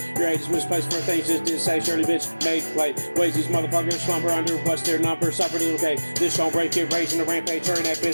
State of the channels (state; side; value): inverted; both; correlation -1.00